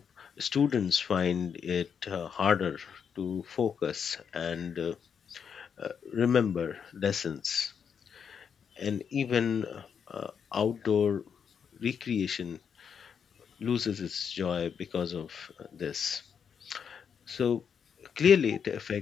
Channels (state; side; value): quieter; right; 7.2 dB